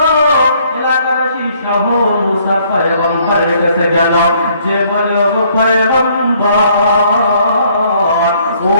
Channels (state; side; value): inverted; both; correlation -0.64